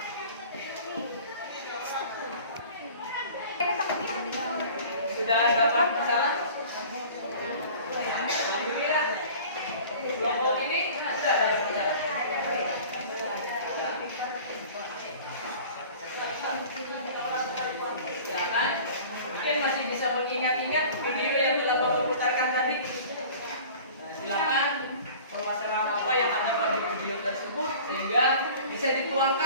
Sudah dapat masalah? Alhamdulillah. Kelompok ini sudah ada masalah. Silakan. Mungkin masih bisa mengingat-ingat video yang telah Bapak putarkan tadi. Nah, silakan permasalahan apa yang ada pada video tersebut sehingga bisa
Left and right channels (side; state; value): both; inverted; correlation -0.44